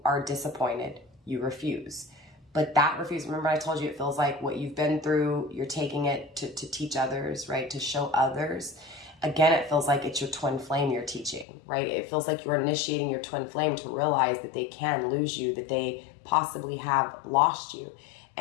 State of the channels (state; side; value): drops out; right; at 11.5 s